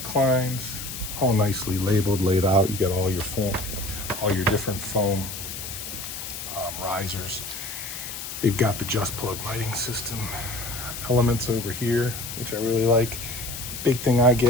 all nicely labeled, laid out. You got all your foam, all your different foam risers. They've got the just plug lighting system elements over here, which I really like. Big thing I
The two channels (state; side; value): noise; left; hiss, 8 dB below the sound